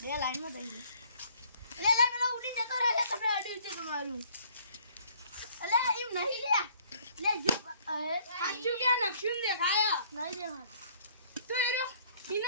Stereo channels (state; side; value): inverted; both; correlation -0.59